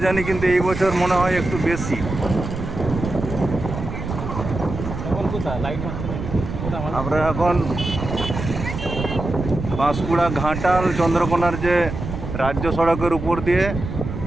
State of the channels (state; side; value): noise; right; rumble, 6 dB below the sound